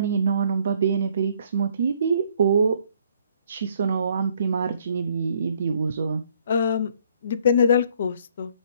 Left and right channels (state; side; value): inverted; both; correlation -0.64